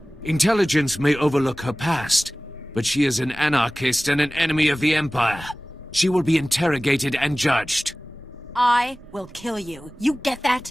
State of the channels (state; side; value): normal; both; correlation 0.98